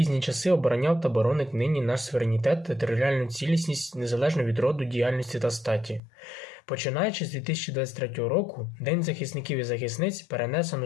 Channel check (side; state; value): right; drops out; at 6.0 s